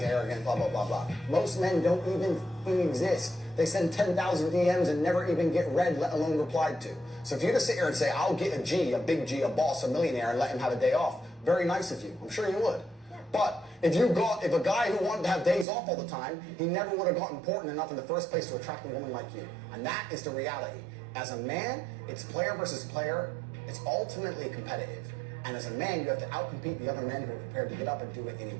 arrogant, blah, blah, blah, blah. Most men don't even fucking exist. They send 10,000 DMs and never even get read, let alone replied to. So if you just sit here and say, I'll get a G, a big G, a boss, a millionaire, and let him have a day off, very nice of you. I'm sure you would. But if a guy who wanted to have days off all the time, he never would have got important enough in the first place to attract a woman like you. And that is the reality. As a man, it's player versus player. It's ultimately competitive. And as a man, you have to outcompete the other men who are prepared to get up and do it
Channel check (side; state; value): left; drops out; at 15.7 s